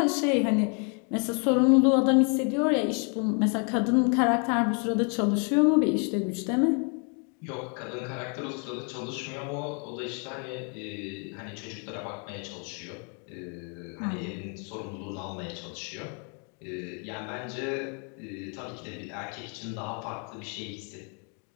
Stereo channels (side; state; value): right; quieter; 38.8 dB